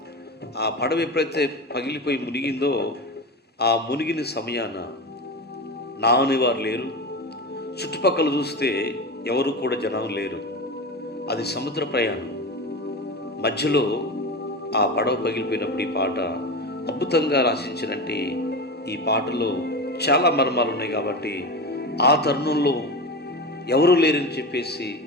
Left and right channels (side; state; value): both; normal; correlation 0.24